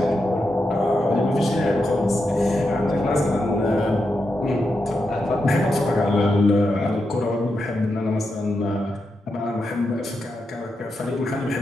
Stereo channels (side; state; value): both; normal; correlation 0.86